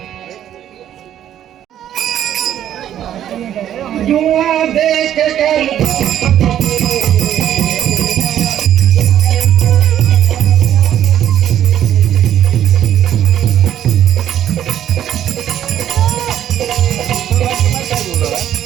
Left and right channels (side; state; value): left; quieter; 10.9 dB